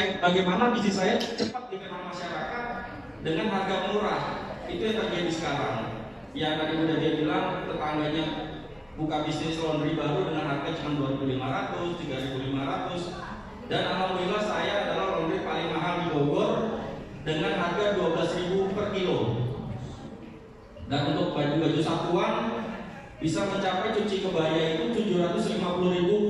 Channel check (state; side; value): identical; both; correlation 1.00